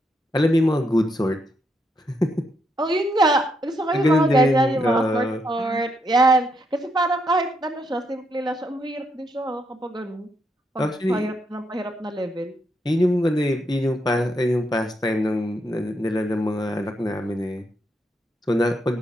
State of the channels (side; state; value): both; normal; correlation 0.78